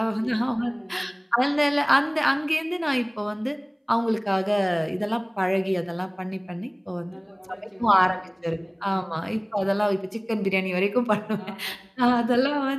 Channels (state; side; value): identical; both; correlation 1.00